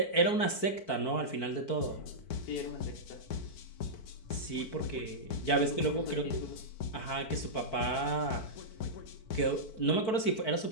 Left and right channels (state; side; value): late; right; 4.5 ms